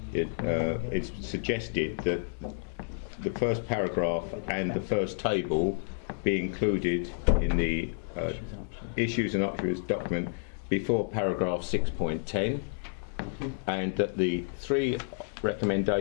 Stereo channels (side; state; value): right; silent; digital silence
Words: it's suggested that the first paragraph and the first table be included in the issues and options document before paragraph 6.10, and that the three